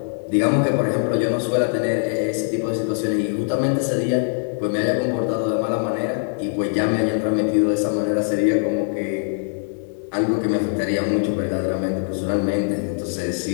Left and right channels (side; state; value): right; silent; digital silence